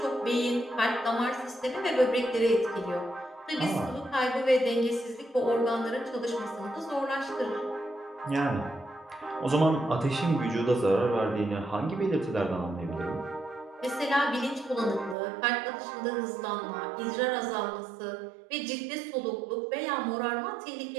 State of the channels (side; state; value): left; drops out; at 15.2 s